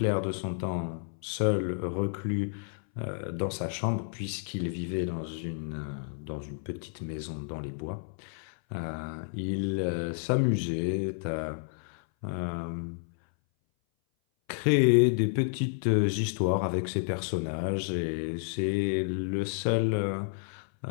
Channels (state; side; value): silent; right; 57 dB below the other